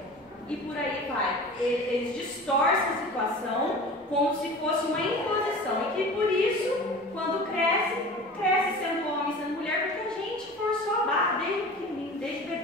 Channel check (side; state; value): both; normal; correlation 0.38